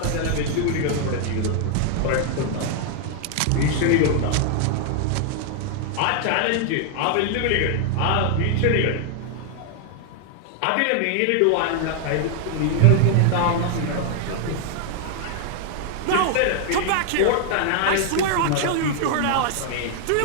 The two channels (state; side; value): different; both; correlation 0.00